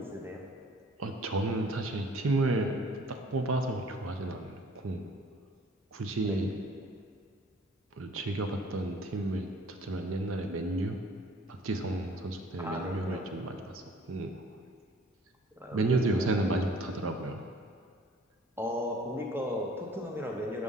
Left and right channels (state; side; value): normal; both; correlation 0.53